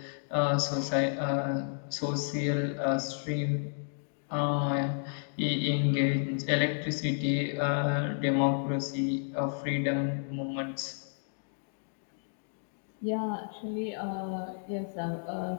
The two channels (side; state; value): right; silent; digital silence